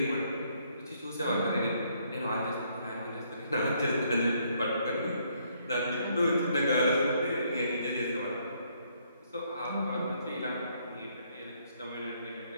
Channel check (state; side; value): inverted; both; correlation -0.69